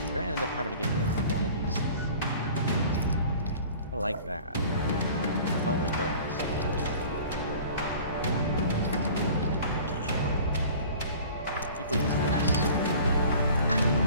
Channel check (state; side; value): inverted; both; correlation -0.45